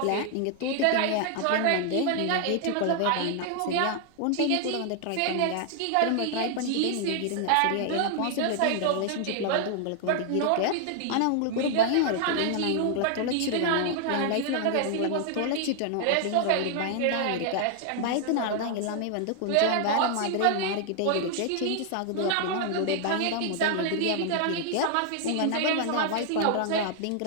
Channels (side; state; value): both; different; correlation 0.00